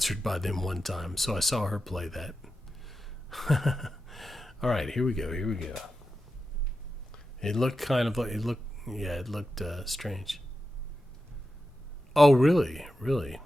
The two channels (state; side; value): normal; both; correlation 0.91